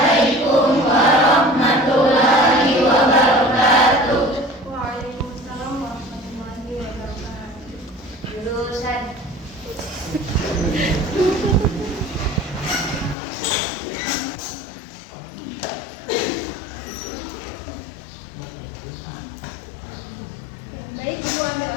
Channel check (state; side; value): drops out; right; at 13.2 s